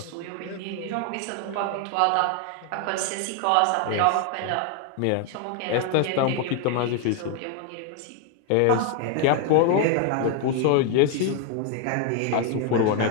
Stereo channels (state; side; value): different; both; correlation 0.00